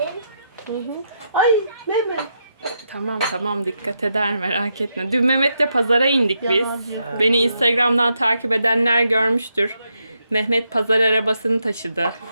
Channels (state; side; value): inverted; both; correlation -0.81